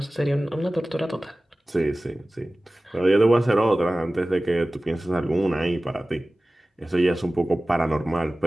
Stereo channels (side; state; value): both; normal; correlation 0.97